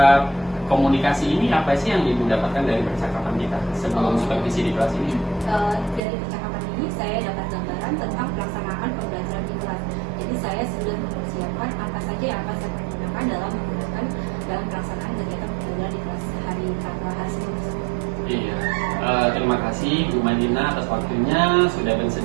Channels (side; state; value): left; drops out; at 6.0 s